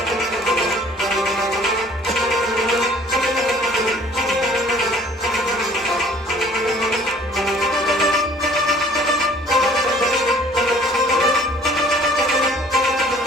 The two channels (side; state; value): both; normal; correlation 0.54